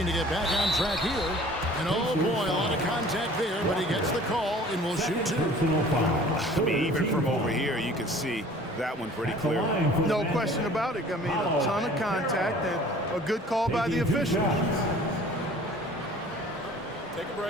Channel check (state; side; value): normal; both; correlation 0.49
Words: to get back on track here. And oh boy, a lot of contact there, but he gets the call and will shoot 2. I mean, even from over here, you can see that one pretty clear. No question about it. I mean, a ton of contact and a good call by the officials. Take a